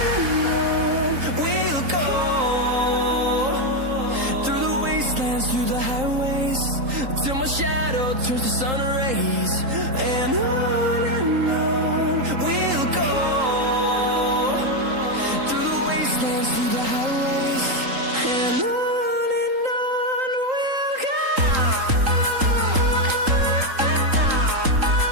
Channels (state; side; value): late; left; 3.8 ms